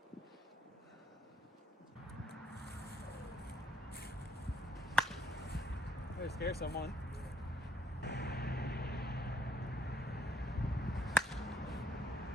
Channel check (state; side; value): normal; both; correlation 0.72